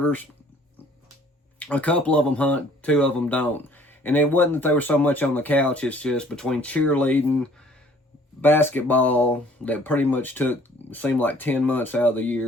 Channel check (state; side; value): normal; both; correlation 0.56